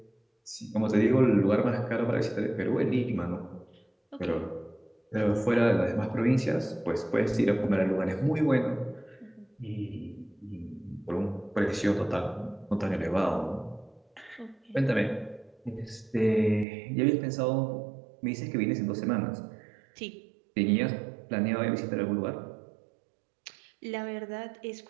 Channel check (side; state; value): left; drops out; at 16.7 s